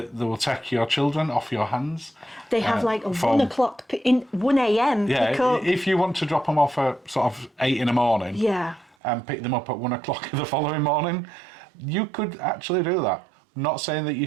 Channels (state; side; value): drops out; left; at 9.0 s